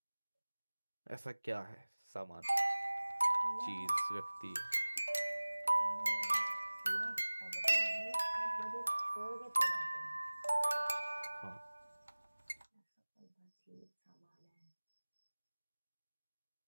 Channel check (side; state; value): both; inverted; correlation -1.00